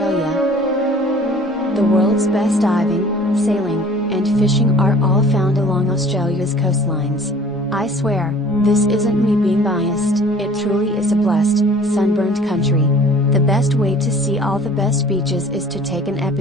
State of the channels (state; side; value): normal; both; correlation 0.49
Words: The world's best diving, sailing, and fishing are all found along Australia's coastlines. I swear, this isn't me being biased, it truly is a blessed, sunburned country. The best way to see all the best beaches is to take an